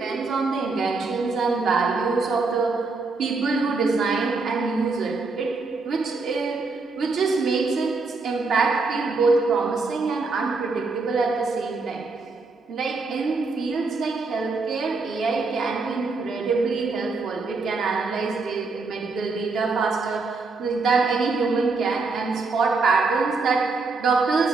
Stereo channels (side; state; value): left; quieter; 4.0 dB